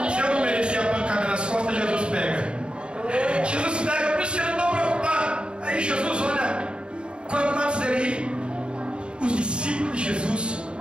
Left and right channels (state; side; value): late; left; 0.053 ms